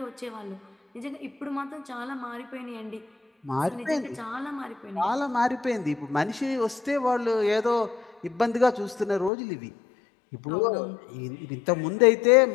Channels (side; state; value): right; drops out; at 9.3 s